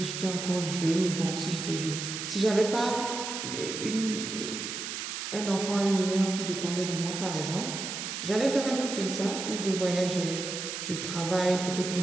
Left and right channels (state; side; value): noise; right; hiss, 5 dB below the sound